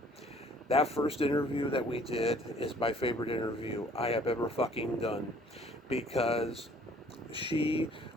That first interview that we did is my favorite interview I have ever fucking done, because she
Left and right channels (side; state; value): both; normal; correlation 0.57